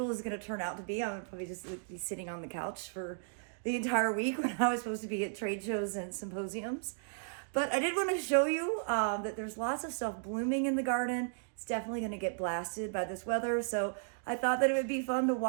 is going to turn out to be. I'm probably just be sitting on the couch for the entire week when I was supposed to be at trade shows and symposiums. But I did want to show you that there's lots of stuff blooming in the garden. It's definitely going to get blasted by this weather. So I thought that it would be fun to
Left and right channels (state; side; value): silent; left; digital silence